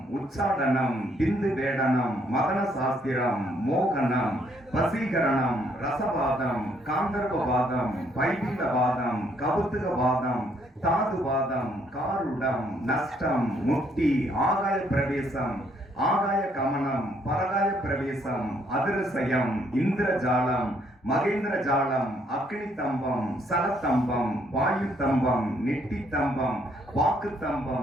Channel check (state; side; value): normal; both; correlation 0.69